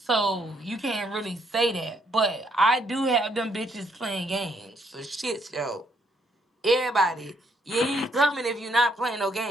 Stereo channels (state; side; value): normal; both; correlation 0.72